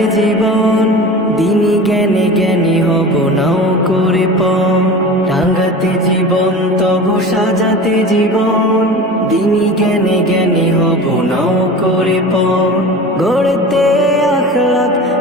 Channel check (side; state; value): both; normal; correlation 0.35